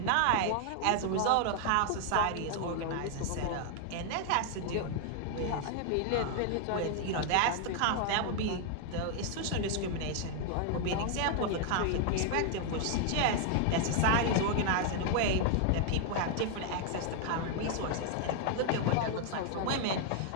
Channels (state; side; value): different; both; correlation 0.00